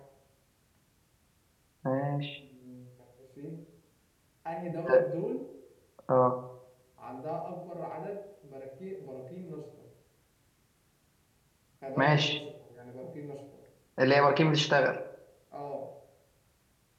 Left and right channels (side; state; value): both; identical; correlation 1.00